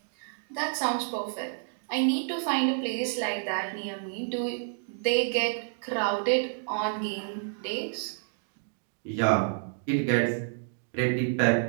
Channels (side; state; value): left; silent; digital silence